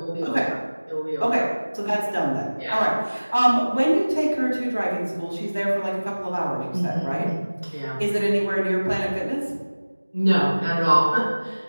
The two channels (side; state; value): both; inverted; correlation -1.00